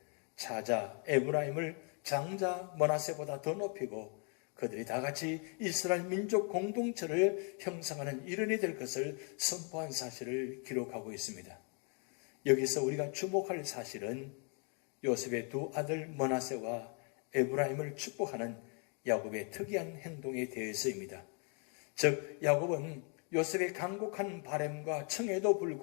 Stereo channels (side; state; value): right; quieter; 38.5 dB